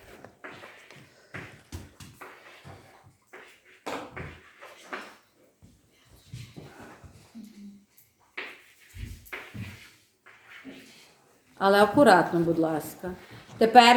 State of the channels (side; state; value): both; identical; correlation 1.00